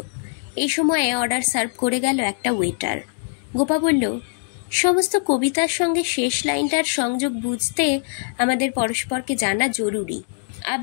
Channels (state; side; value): silent; right; 64 dB below the other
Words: এই সময়ে অর্ডার সার্ভ করে গেল একটা ওয়েটার। গোপা বলল, সমস্ত কবিতার সঙ্গে শেষ লাইনটার সংযোগ বুঝতে আমাদের পরস্পরকে জানা জরুরি।